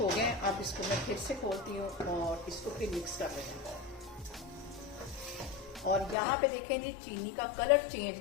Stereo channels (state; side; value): drops out; right; at 6.2 s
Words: गए। अब इसको मैं फिर से खोलती हूँ और इसको फिर मिक्स कर लेते हैं। और यहाँ पे देखें जी, चीनी का कलर चेंज